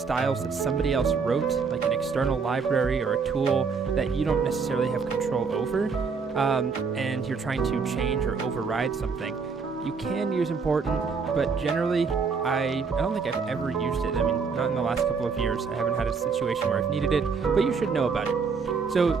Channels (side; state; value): left; quieter; 5.2 dB